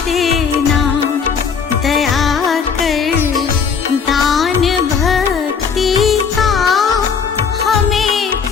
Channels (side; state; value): right; quieter; 6.2 dB